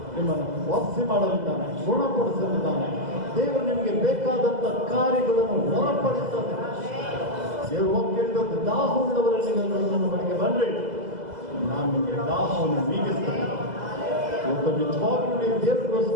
ನಿಮ್ಮನ್ನು ವಾಸಿ ಮಾಡಲಿದ್ದಾನೆ, ಗುಣಪಡಿಸಲಿದ್ದಾನೆ. ದೇವರು ನಿಮಗೆ ಬೇಕಾದಂಥ ಕಾರ್ಯಗಳನ್ನು ಹೊರಪಡಿಸ್ತದೆ. ದೇವರು ಹೋಗ್ತಿದ್ದು ದಾಹವುಳ್ಳವರಲ್ಲಿ ನನ್ನ ಬಳಿಗೆ ಬನ್ನಿರಿ, ನಾನು ನಿಮಗೆ ದಾಹವನ್ನು ನೀಗಿಸ್ತೇನೆ. ಇವತ್ತು ನಿಜವಾಗ್ಲೂ ನೀವು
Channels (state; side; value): late; left; 2.0 ms